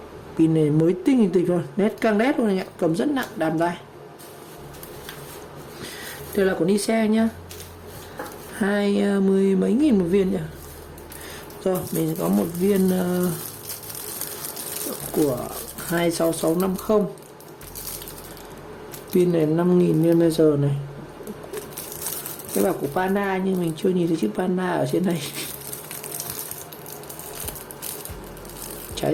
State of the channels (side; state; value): both; identical; correlation 1.00